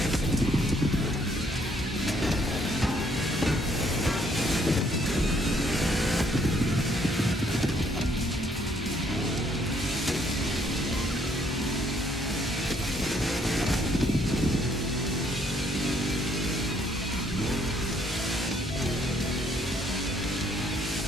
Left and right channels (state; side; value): normal; both; correlation 0.67